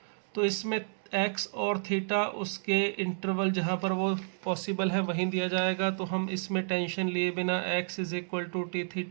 तो इसमें x और थीटा उसके इंटरवल जहाँ पर वो पॉसिबल है वहीं दिया जाएगा, तो हम इसमें टेंशन लिए बिना x is equal to T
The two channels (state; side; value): silent; left; digital silence